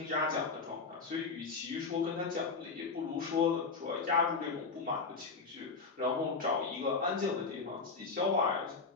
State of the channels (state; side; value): quieter; right; 4.5 dB